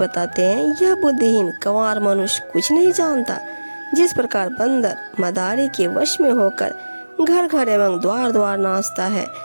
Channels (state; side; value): inverted; both; correlation -1.00